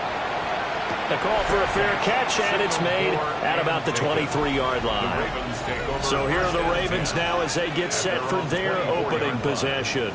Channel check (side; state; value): both; identical; correlation 1.00